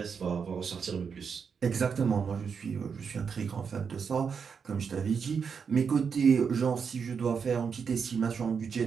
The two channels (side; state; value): left; quieter; 6.3 dB